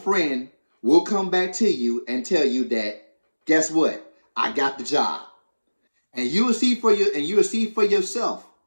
will come back to you and tell you that, "Guess what? I got the job." And you will see for yourself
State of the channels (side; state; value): both; inverted; correlation -1.00